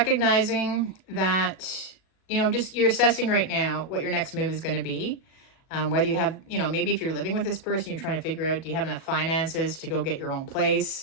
that, just you're assessing right now what your next move is going to be. Whether you have, maybe if you're living with this person, you're trying to figure out, do you have enough finances to go get your own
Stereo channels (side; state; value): right; late; 37 ms